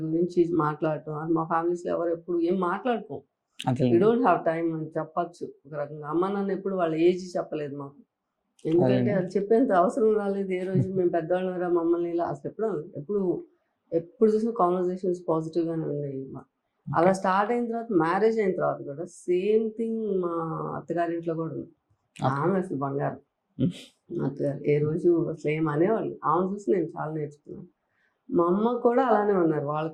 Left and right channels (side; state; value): both; identical; correlation 1.00